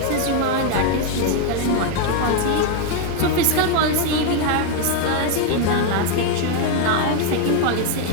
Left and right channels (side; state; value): both; different; correlation 0.01